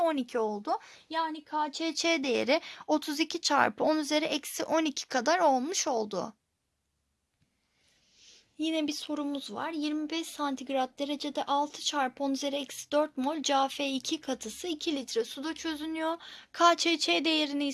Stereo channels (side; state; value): both; identical; correlation 1.00